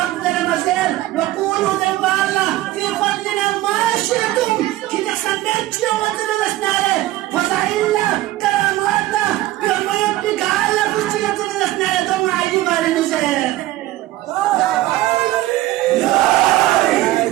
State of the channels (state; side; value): quieter; left; 16.1 dB